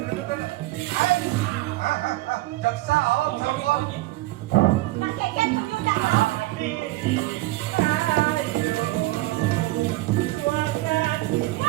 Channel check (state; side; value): quieter; left; 18.7 dB